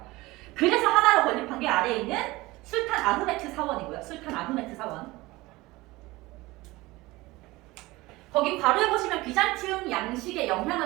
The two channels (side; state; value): left; quieter; 20.4 dB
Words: 그래서 하나로 건립한 게 아래에 있는 술탄 아흐메트 사원이고요. 술탄 아흐메트 사원. 거기 바로에 보시면 비잔티움 양식의